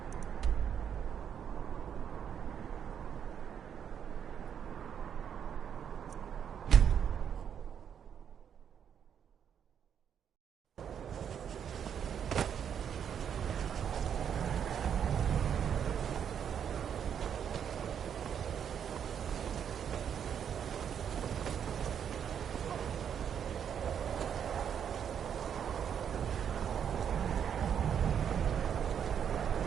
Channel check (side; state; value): left; quieter; 8.3 dB